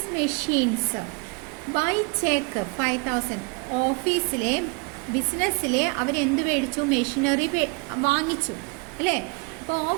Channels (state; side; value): quieter; left; 32.2 dB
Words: machines by cheque 5000. ഓഫീസിലെ ബിസിനസ്സിലെ അവരെന്ത് മേടിച്ചു? മെഷീനറി വാങ്ങിച്ചു അല്ലേ? അപ്പോൾ